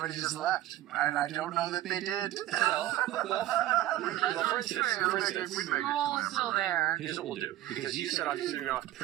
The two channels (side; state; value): left; quieter; 14.4 dB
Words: just left, and I don't know that they did. Well, for instance, We'd make a Roll's still there. here's what we'll do. Because you said obviously you're going to